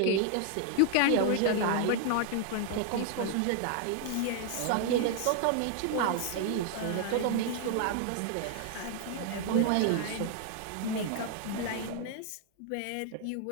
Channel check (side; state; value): both; different; correlation 0.00